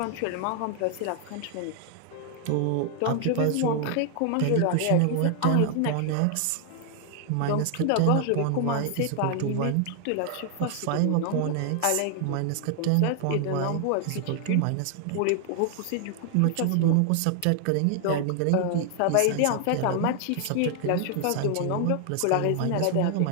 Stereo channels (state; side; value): different; both; correlation 0.00